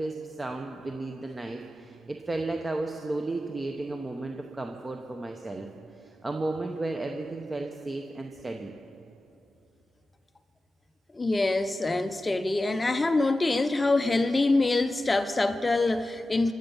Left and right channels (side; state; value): both; normal; correlation 0.93